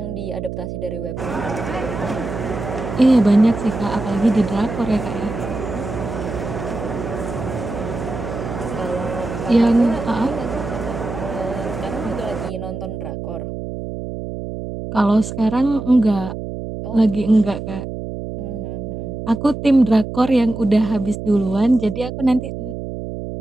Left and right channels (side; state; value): right; noise; hum, 7 dB below the sound